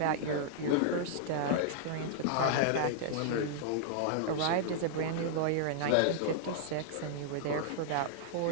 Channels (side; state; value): both; different; correlation -0.01